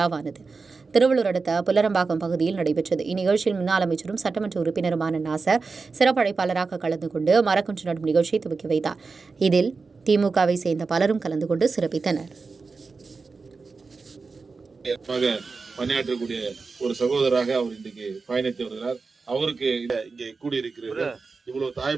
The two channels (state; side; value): quieter; left; 4.4 dB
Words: திருவள்ளூர் அடுத்த புல்லரம்பாக்கம் பகுதியில் நடைபெற்றது. இந்நிகழ்ச்சியில் முன்னாள் அமைச்சரும் சட்டமன்ற உறுப்பினருமான நாசர் சிறப்பு அழைப்பாளராக கலந்து கொண்டு மரக்கன்று நடும் நிகழ்ச்சியை துவக்கி வைத்தார். இதில் திமுகவை சேர்ந்த பலரும் கலந்து கொண்டு சிறப்பித்தனர். பணியாற்றக்கூடிய ஒரு சகோதரராக அவர் இன்றைக்கு பயணித்து வருகிறார். அவருக்கு இங்கே கூடியிருக்கிறார். இவ்வளவு